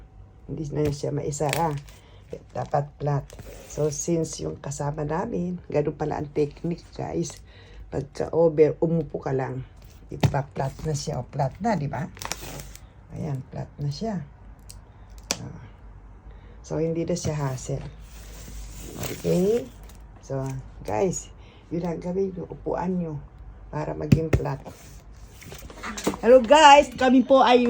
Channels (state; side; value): identical; both; correlation 1.00